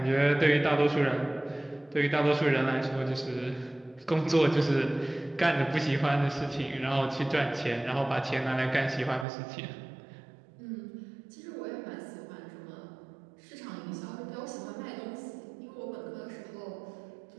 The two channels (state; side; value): drops out; left; at 9.2 s